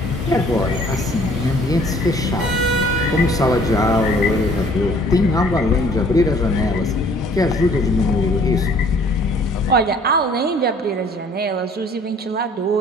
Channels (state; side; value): normal; both; correlation 0.56